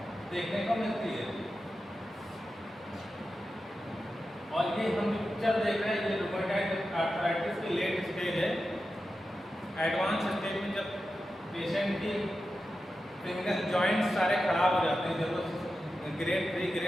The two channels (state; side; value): normal; both; correlation 0.91